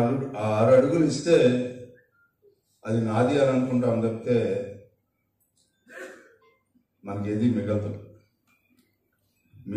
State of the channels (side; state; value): both; identical; correlation 1.00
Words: 6 అడుగులు ఇస్తే అది నాది అని అనుకుంటాం తప్పితే మనకి ఏది మిగలదు.